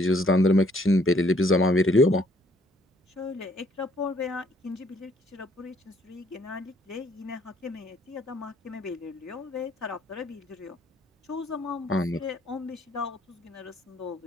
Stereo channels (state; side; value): normal; both; correlation 0.65